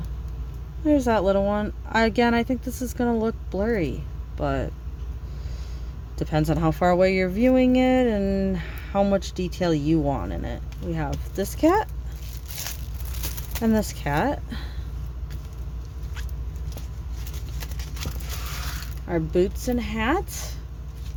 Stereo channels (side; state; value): both; identical; correlation 1.00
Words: there's that little one. Again, I think this is going to look blurry, but depends on how far away you're viewing it and how much detail you want in it. We have this cat and this cat. Our boots and hat.